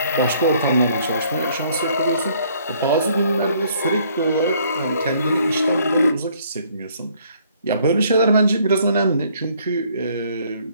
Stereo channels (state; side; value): inverted; both; correlation -0.63